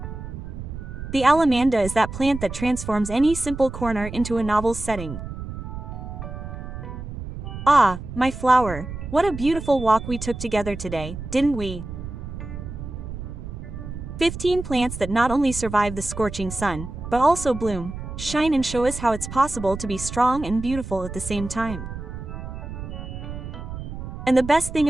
The alamanda is that plant that transforms any simple corner into a novel setting. Ah, my flower, what a beautiful walk we took together today, didn't we? 15 plants that not only survive the scorching sun, but also bloom, shine and show us how it's possible to be strong and beautiful at the same time. And the best thing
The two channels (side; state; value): right; noise; rumble, 9 dB below the sound